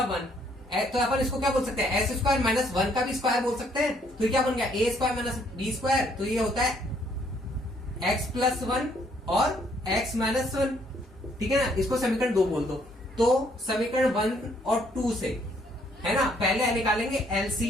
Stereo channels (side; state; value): both; normal; correlation 0.67